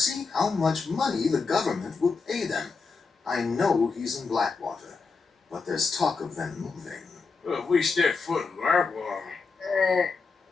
how much money the government will pay them. I know he's in Blackwater, but there's talk of them moving. Well, if we step foot in Blackwater...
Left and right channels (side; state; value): right; quieter; 4.6 dB